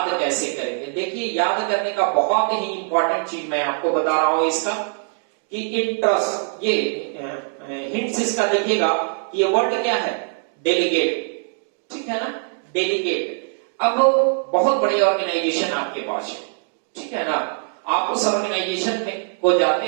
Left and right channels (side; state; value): left; silent; 58 dB below the other